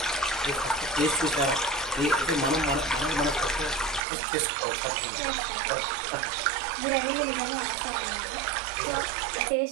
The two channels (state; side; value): drops out; left; at 4.0 s